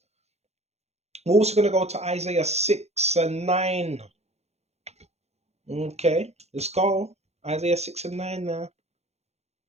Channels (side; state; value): left; late; 0.31 ms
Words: We're also going to go to Isaiah 6 and 9. Okay, let's go. Isaiah 6 and 9 now.